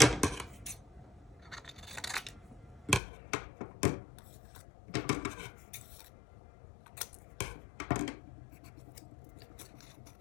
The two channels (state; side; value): drops out; right; at 3.0 s